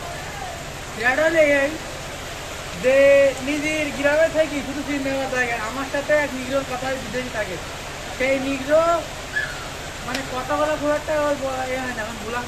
এটা হলে এই যে নিজের গ্রামে থাকি শুধু সিনেমা থাকে, আমার সাথে এক নিগ্রোর কথা বিদেশি থাকে। সেই নিগ্রো মানে কথা বলা খুব একটা এ হয় না, এখন ব্ল্যাক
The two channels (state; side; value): identical; both; correlation 1.00